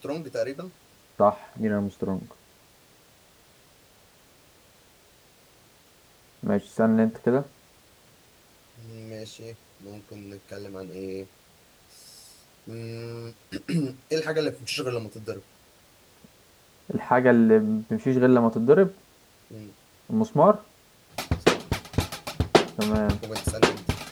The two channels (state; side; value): identical; both; correlation 1.00